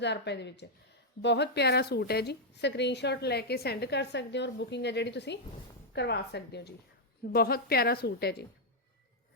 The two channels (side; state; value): both; normal; correlation -0.02